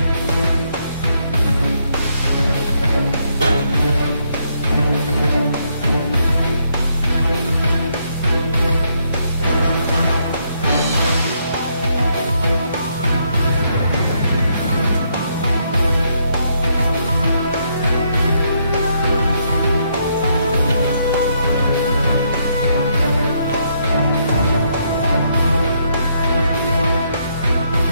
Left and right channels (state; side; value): inverted; both; correlation -0.74